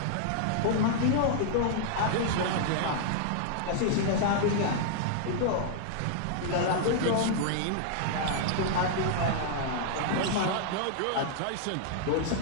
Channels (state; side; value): different; both; correlation -0.01